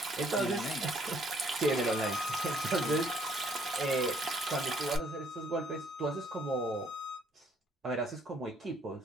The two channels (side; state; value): both; normal; correlation 0.65